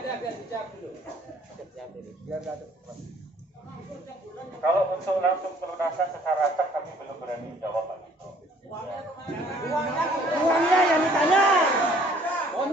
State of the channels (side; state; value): both; normal; correlation 0.58